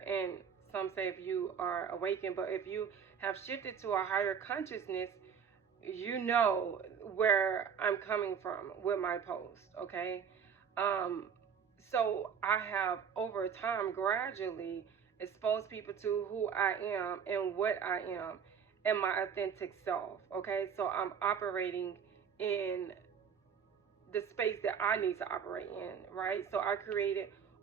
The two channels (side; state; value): left; quieter; 7.2 dB